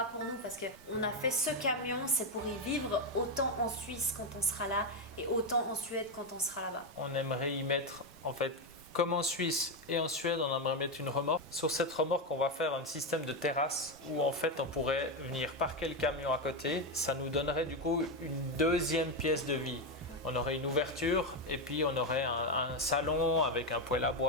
pour nous, parce qu'on a fait ce camion, c'est pour y vivre autant en Suisse quand on sera là et autant en Suède quand on sera là-bas. On aimerait y mettre, en fait, comme en Suisse et en Suède, on aimerait mettre une remorque. Sur cette remorque, on va faire un système de terrasse où en fait on pourrait venir parquer le camion à côté. Ça nous donnerait du coup une deuxième pièce de vie. On aurait une ouverture et puis on aurait un salon avec un poêle à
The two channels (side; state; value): both; normal; correlation 0.08